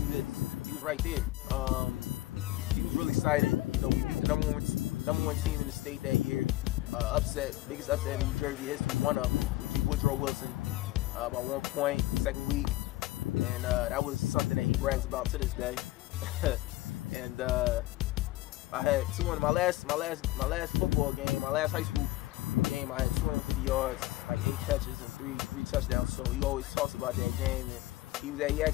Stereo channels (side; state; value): right; quieter; 17.5 dB